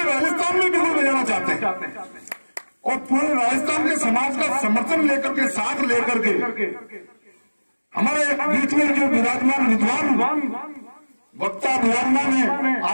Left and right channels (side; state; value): both; inverted; correlation -1.00